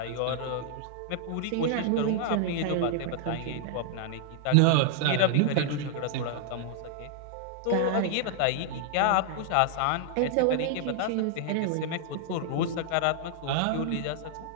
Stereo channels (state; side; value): different; both; correlation -0.01